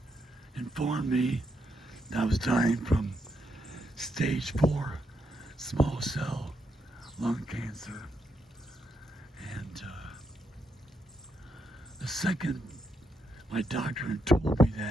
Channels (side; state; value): both; normal; correlation 0.80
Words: informed me that I was dying from stage 4 small cell lung cancer. And the second my doctor had told me